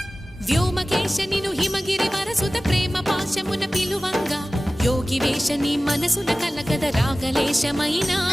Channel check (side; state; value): both; normal; correlation 0.97